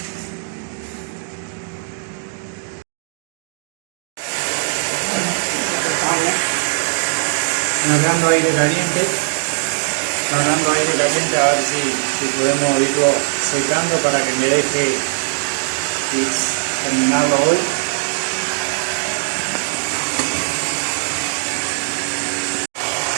largando aire caliente, a ver si podemos irlo secando para que me deje terminarlo hoy.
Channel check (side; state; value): left; silent; digital silence